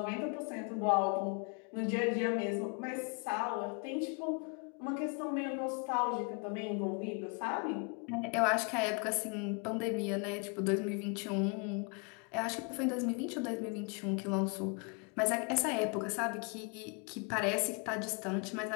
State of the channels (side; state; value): right; quieter; 35.2 dB